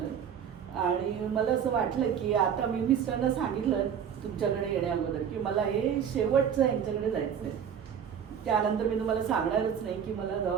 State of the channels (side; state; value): left; quieter; 8.1 dB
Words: आणि मला असं वाटलं की आता मी मिस्टरना सांगितलं तुमच्याकडे येण्या अगोदर की मला हे शेवटचं यांच्याकडे जायचं आहे. त्यानंतर मी तुम्हाला सांगणारच नाही की मला